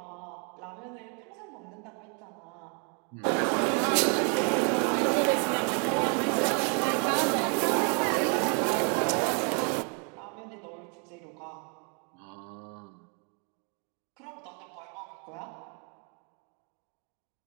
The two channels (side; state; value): left; quieter; 38.4 dB